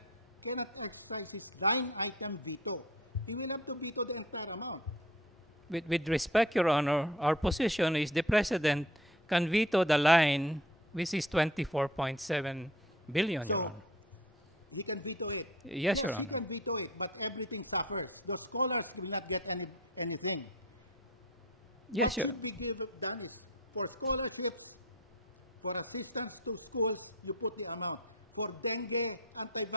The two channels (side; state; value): both; normal; correlation 0.44